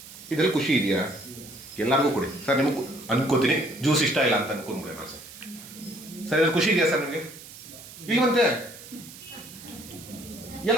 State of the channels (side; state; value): right; noise; hiss, 16 dB below the sound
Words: ಇದರಲ್ಲಿ ಖುಷಿ ಇದೆಯಾ? ಎಲ್ಲರಿಗೂ ಕೊಡಿ ಸರ್. ನಿಮಗೆ ಅನ್ಕೋತೀನಿ ಜ್ಯೂಸ್ ಇಷ್ಟ ಇಲ್ಲ ಅಂತ ಅನ್ಕೊಂಡ್ಬಿಡಿ ನಾನು ಸರ್. ಸರ್ ಇದ್ರಲ್ಲಿ ಖುಷಿ ಇದೆಯಾ ಸರ್ ನಿಮಗೆ? ಇಲ್ವಂತೆ.